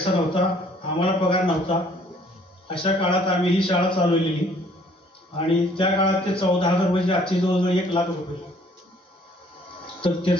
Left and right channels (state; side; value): normal; both; correlation 0.60